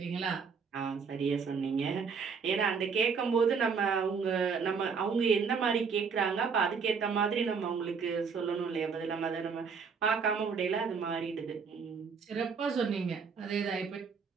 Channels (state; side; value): quieter; left; 5.7 dB